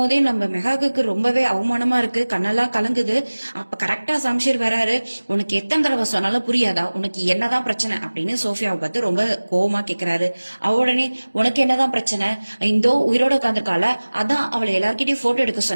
நம்ம மெகாக்கு ரொம்பவே அவமானமா இருக்கு, கண்ணெல்லாம் கலங்குது. அப்ப கரெக்டா சம்ஷீர் வராரு. உனக்கு எத்தனை தடவை சொன்னாலும் புரியாதா, உனக்கு என்னதான் பிரச்சனை அப்படின்னு சோஃபியாவை பார்த்து ரொம்ப கோவமா கேக்குறாரு. அவ உடனே, உனக்கு என்னதான் பிரச்சனை, இந்தோ உயிரோட உட்காந்துருக்கால, அதான் அவளை எல்லார்கிட்டயும் போட்டோ எடுக்க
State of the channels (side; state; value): both; inverted; correlation -1.00